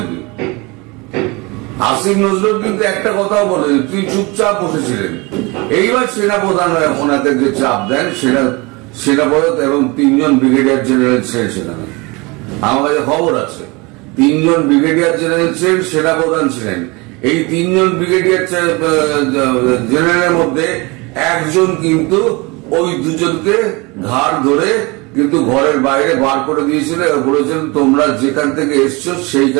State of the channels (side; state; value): left; quieter; 26.0 dB